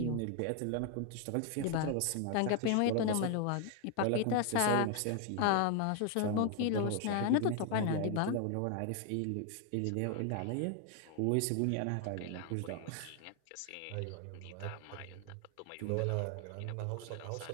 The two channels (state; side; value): different; both; correlation 0.00